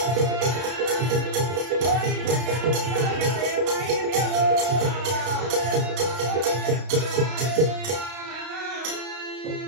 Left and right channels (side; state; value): left; late; 32 ms